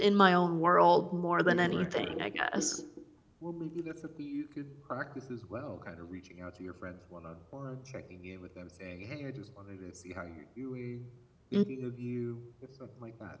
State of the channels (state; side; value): identical; both; correlation 1.00